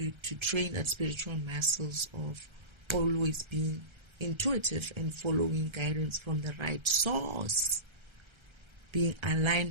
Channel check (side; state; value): left; late; 1.3 ms